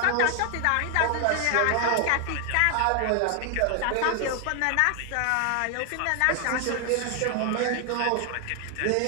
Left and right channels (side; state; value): both; different; correlation 0.00